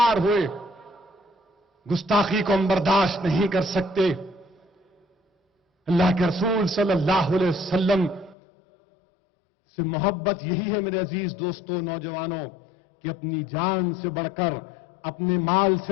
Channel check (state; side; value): drops out; right; at 8.3 s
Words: ہوئے، گستاخی کو ہم برداشت نہیں کر سکتے۔ اللہ کے رسول صلی اللہ علیہ وسلم سے محبت یہی ہے میرے عزیز دوستوں، نوجوانوں، کہ اپنی جان سے بڑھ کر، اپنے مال